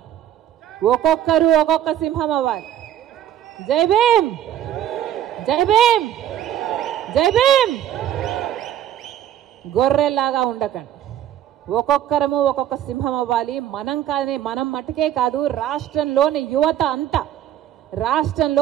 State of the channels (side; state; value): left; quieter; 11.3 dB